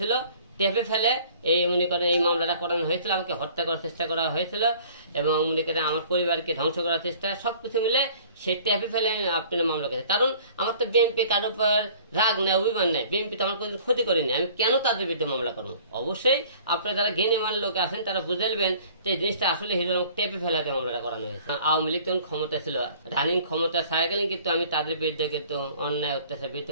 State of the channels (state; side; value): inverted; both; correlation -0.51